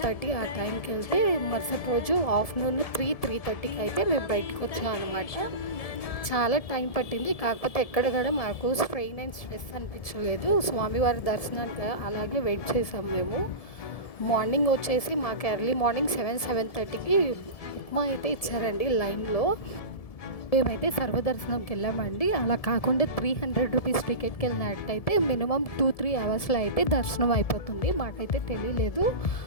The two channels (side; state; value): right; late; 1.7 ms